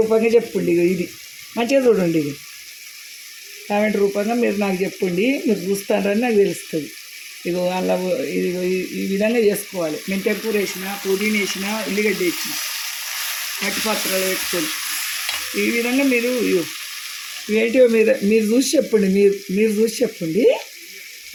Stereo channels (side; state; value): both; identical; correlation 1.00